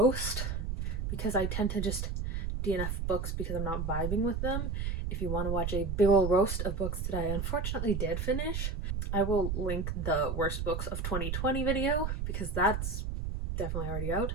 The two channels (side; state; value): right; noise; rumble, 2 dB below the sound